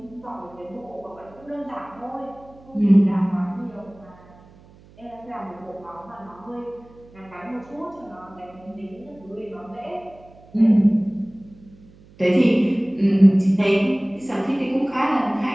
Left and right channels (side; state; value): right; noise; hum, 25 dB below the sound